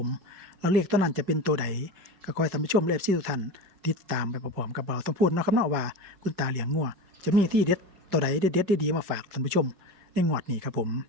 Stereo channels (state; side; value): late; left; 5.1 ms